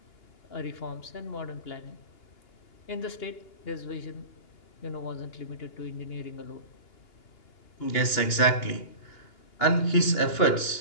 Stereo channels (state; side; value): late; right; 2.8 ms